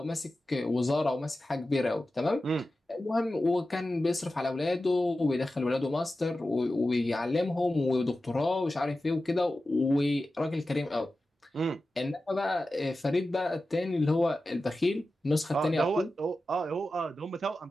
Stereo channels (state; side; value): normal; both; correlation 0.93